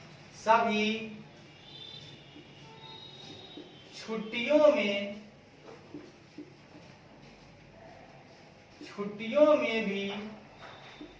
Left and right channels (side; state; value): both; identical; correlation 1.00